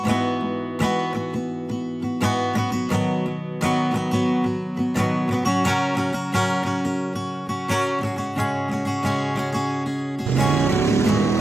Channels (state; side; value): normal; both; correlation 0.94